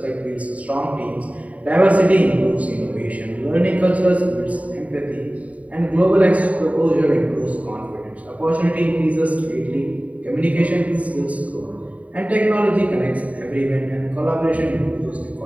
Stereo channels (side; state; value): left; late; 0.068 ms